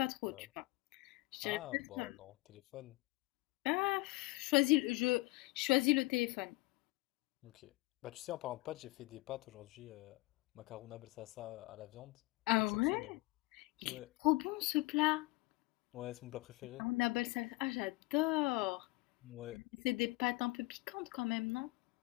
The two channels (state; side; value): quieter; right; 22.9 dB